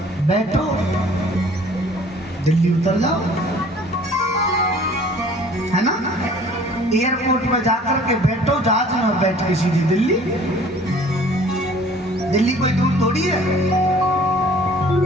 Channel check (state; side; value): normal; both; correlation 0.52